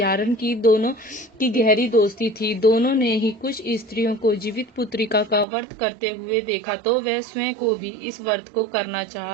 की दोनों की गहरी दोस्ती थी। दोनों ने ही कुछ स्त्रियों को जीवित पुत्रिका का व्रत करते हुए देखा, तो वह स्वयं को भी इस व्रत को करना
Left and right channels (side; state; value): left; drops out; at 5.5 s